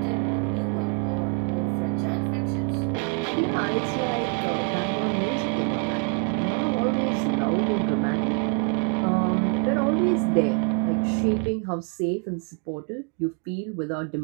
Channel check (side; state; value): left; quieter; 37.5 dB